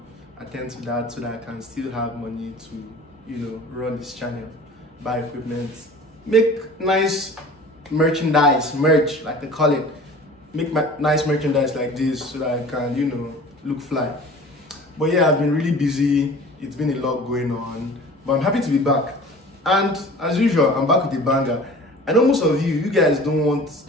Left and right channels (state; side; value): normal; both; correlation 0.43